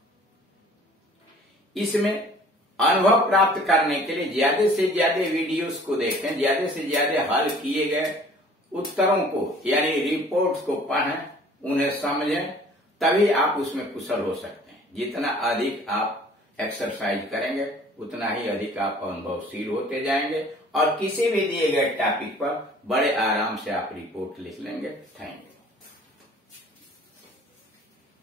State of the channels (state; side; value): normal; both; correlation 0.52